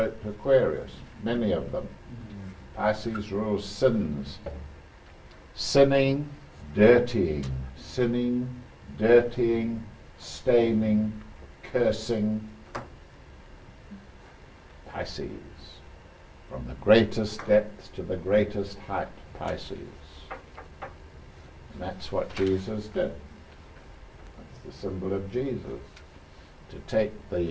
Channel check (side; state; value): both; identical; correlation 1.00